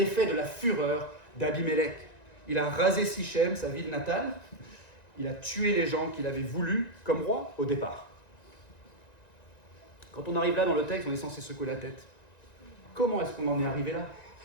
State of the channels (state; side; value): late; right; 1.9 ms